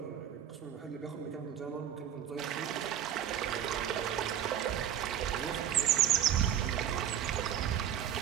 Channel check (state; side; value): quieter; left; 9.7 dB